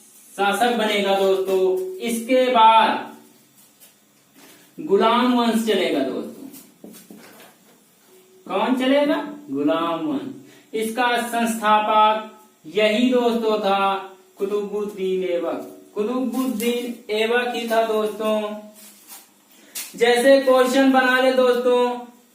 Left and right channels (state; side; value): identical; both; correlation 1.00